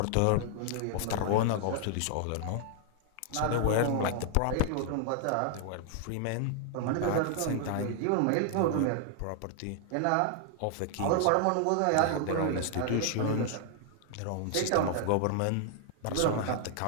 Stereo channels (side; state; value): both; different; correlation 0.00